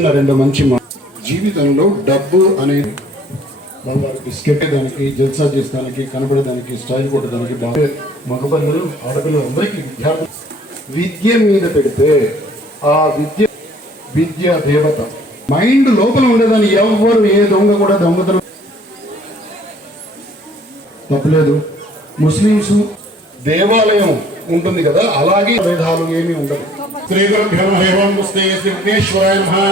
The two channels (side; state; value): both; normal; correlation 0.57